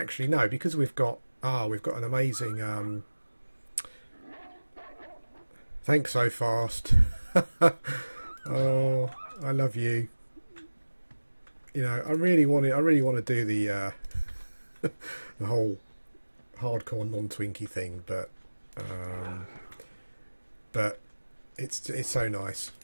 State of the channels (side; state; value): both; inverted; correlation -1.00